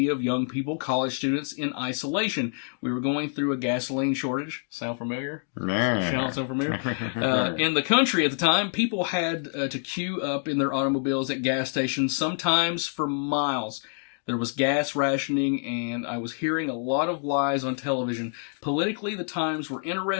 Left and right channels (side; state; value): right; silent; digital silence